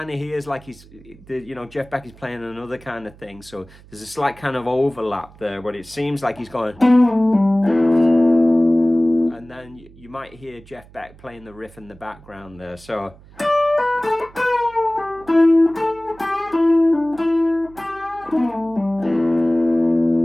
of hears like he's, you know, Jeff Beck is playing another kind of thing. So there's a slight kind of overlap there, but it seems like he's going. And then you might hear Jeff Beck playing the riff in the background there. So.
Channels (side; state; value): right; noise; hum, 23 dB below the sound